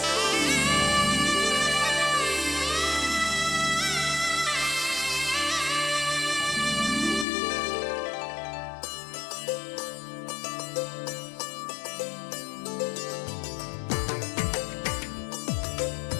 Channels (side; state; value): right; drops out; at 7.2 s